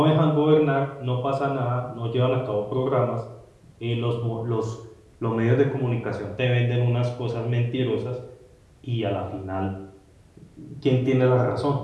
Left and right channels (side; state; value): both; identical; correlation 1.00